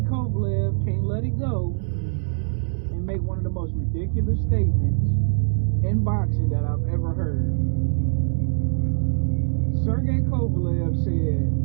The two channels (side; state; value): left; silent; digital silence